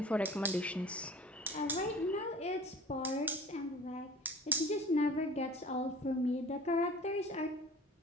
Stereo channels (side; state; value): both; normal; correlation 0.43